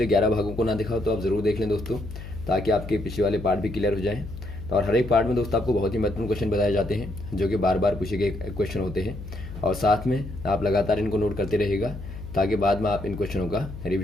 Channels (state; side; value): noise; left; hum, 11 dB below the sound